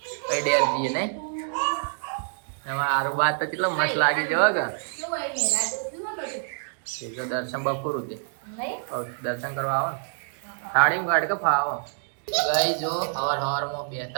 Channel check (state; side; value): silent; left; digital silence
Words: પછી ડેર જઈએ. નહીં એમાં આરું બાદ તો કેટલો મસ્ત લાગી જવા કે જો દર્શન બપોરું છે દર્શન કરવા આવો ને થાળી ગાડ કે ફાવો. ગાઈ જો સવારમાં